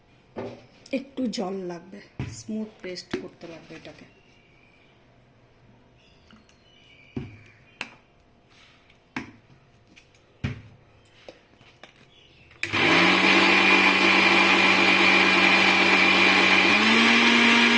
একটু জল লাগবে, স্মুথ পেস্ট করতে লাগবে এটাকে।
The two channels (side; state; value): both; identical; correlation 1.00